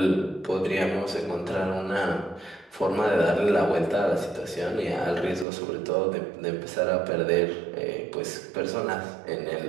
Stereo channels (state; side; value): drops out; left; at 5.5 s